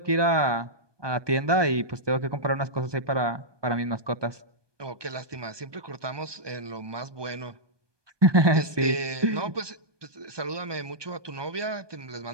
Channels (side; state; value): left; late; 1.2 ms